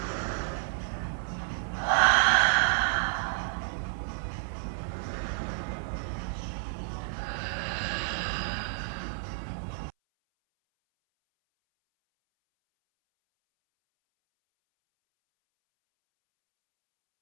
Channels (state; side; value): silent; left; 58 dB below the other